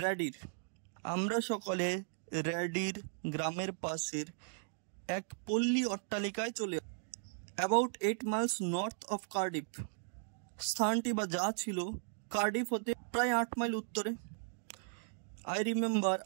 Radir, আমরা সকলে র্যাডির গ্রামের পাশের এক পল্লী অট্টালিকায় চলে about 8 miles north of Cardiff, স্থানটি বা যা ছিল কার্ডিফ হতে প্রায় 8 মাইল উত্তরে। আই রিমেম্বার,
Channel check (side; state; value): left; silent; digital silence